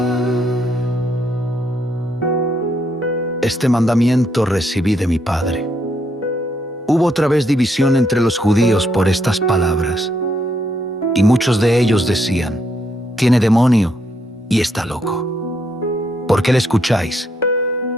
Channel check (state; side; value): normal; both; correlation 0.75